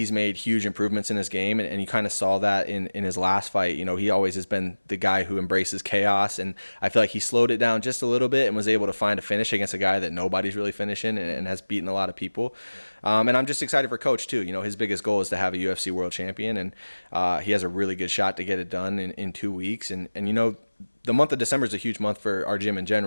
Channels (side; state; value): both; inverted; correlation -1.00